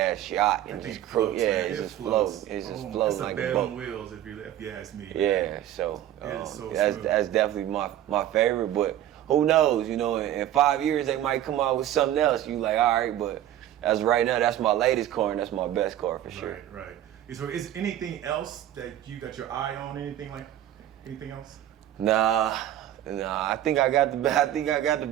yacht and just floats, it's just floating. It's just floating like a bed boat on wheels, if you ask me. Yeah, so, so that's definitely my favorite. But who knows? You know, in 5 years they might come out with something else. You like, all right, but as right now, that's my latest car and that's my best car for sure. Right. So is anything else that you got your eye on? Anything else? Nah. I think I got the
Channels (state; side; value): quieter; left; 12.2 dB